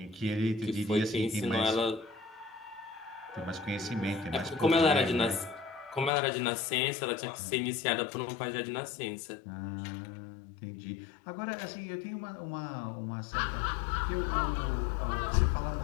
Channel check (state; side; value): drops out; right; at 6.1 s